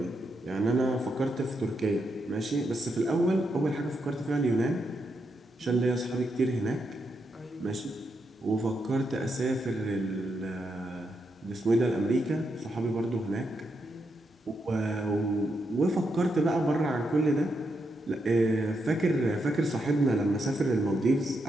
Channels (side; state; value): both; normal; correlation 0.82